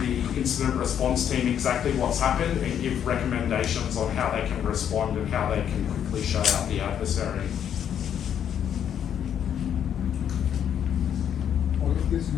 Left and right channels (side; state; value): right; quieter; 9.1 dB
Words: incident response team exactly what's happened, and give recommendations on how they can respond and how they can quickly shut out the adversary. All of this